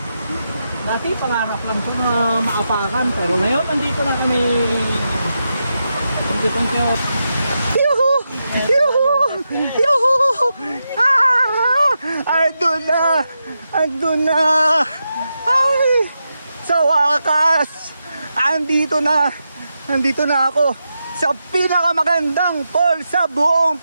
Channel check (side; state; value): both; inverted; correlation -0.87